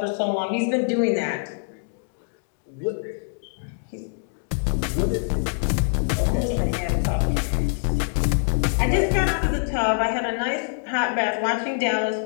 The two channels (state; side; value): silent; right; digital silence